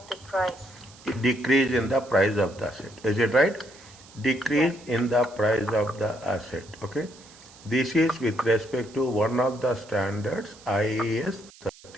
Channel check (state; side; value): noise; right; hiss, 22 dB below the sound